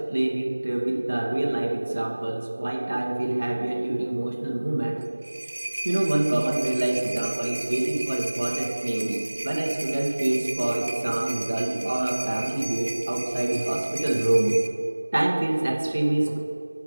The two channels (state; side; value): inverted; both; correlation -1.00